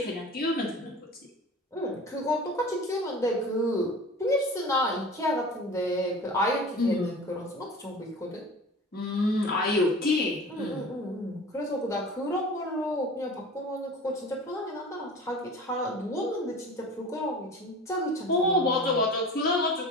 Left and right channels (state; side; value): normal; both; correlation 0.38